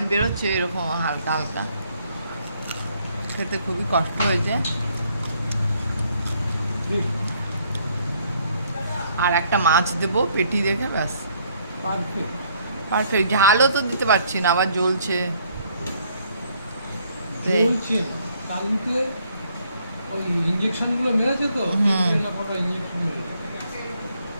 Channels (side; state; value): both; inverted; correlation -0.67